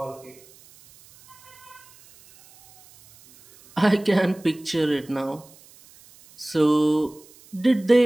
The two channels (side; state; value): right; noise; hiss, 26 dB below the sound